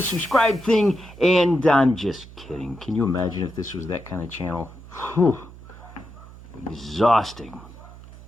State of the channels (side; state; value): right; noise; hum, 18 dB below the sound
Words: subscribe thing. And I'm just kidding. Can you imagine if this was that kind of channel? Whew. Exhausting.